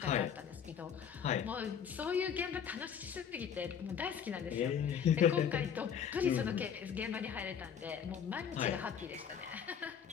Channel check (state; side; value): quieter; right; 7.9 dB